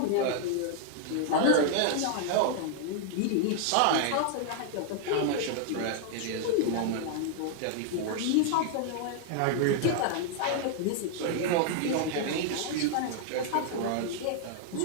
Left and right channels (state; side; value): different; both; correlation 0.00